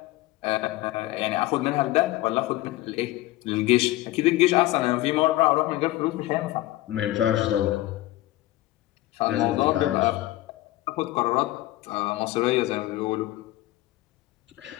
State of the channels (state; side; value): quieter; right; 17.0 dB